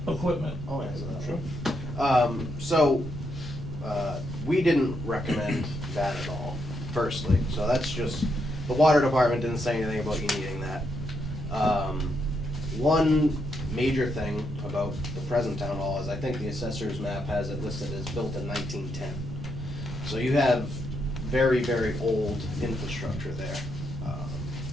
equipment? I'll answer that. Sure. So, we didn't recommend that at all, firstly, so that's just, the water department didn't say anything about you needing that. One major thing about the present town hall is I think the assessor's map has it listed as built in 1910. So you have very, very old infrastructure there.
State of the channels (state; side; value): noise; right; rumble, 8 dB below the sound